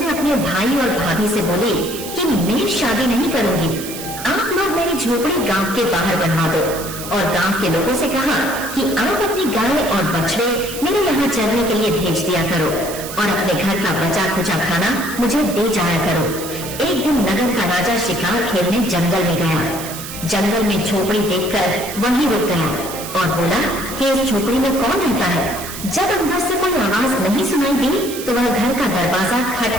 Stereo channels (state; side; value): noise; right; hiss, 10 dB below the sound